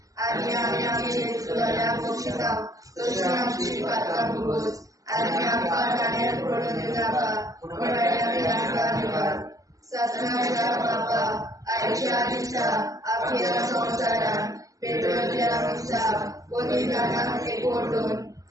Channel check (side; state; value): left; late; 0.17 ms